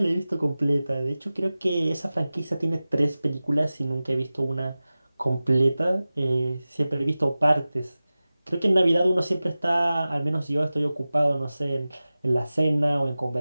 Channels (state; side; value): inverted; both; correlation -0.97